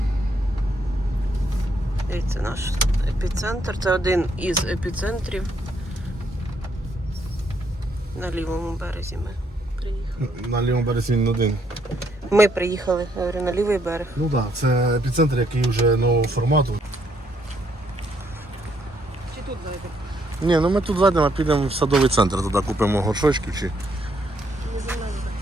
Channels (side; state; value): both; normal; correlation 0.72